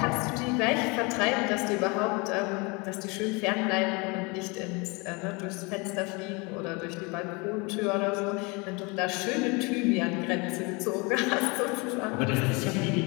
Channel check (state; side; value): quieter; right; 28.5 dB